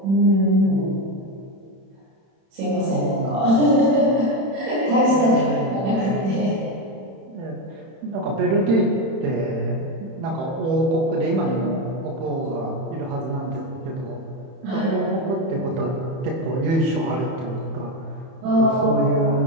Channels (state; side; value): late; left; 31 ms